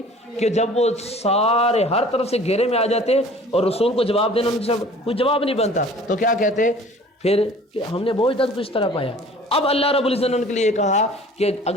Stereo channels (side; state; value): both; normal; correlation 0.48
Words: کہ جب وہ سارے ہر طرف سے گھیرے میں آ جاتے اور رسول کو جواب دینا ان سے کوئی جواب نہیں بنتا, تو کیا کہتے پھر کہ ہم نے بہت اجداد کو اس طرح پایا. اب اللہ رب العزت نے ان کے لیے کہا کہ